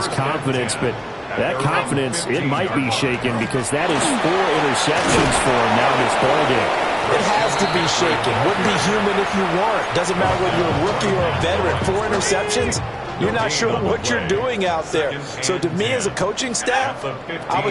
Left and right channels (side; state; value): both; identical; correlation 1.00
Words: confidence, but that confidence, it might be shaken because that is 4 interceptions for him now in this ballgame. It has to be shaken. Wouldn't be human if you weren't. Doesn't matter whether you're a rookie or a veteran. 4 interceptions, you're not sure what you're doing out there. So to me as a coaching staff, I